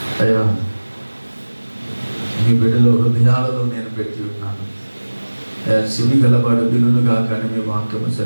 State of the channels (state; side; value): inverted; both; correlation -1.00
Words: అయ్యా మీ బిడ్డల హృదయాలలో నేను పెట్టి ఉన్నాను. అయ్యా చెవి గలవాడు వినుగా కానీ మీ వాక్యము